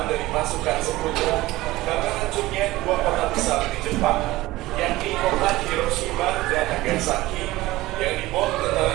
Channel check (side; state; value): left; quieter; 18.1 dB